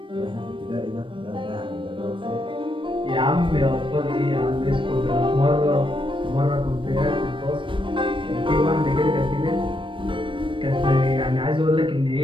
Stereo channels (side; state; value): left; late; 0.25 ms